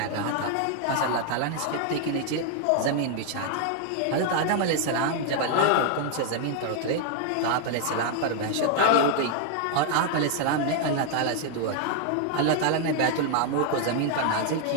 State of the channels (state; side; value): different; both; correlation 0.00